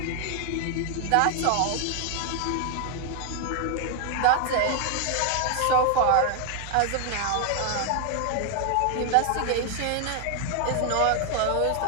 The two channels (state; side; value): different; both; correlation 0.00